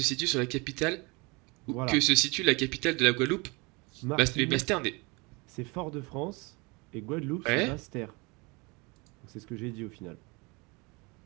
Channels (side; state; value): left; quieter; 27.5 dB